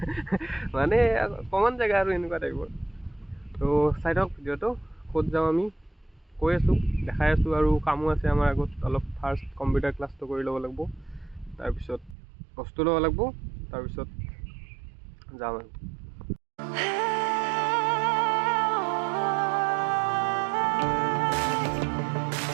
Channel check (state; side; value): drops out; left; at 12.2 s